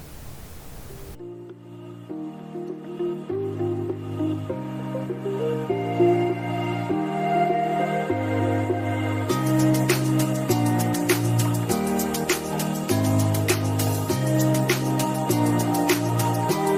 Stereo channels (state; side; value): identical; both; correlation 1.00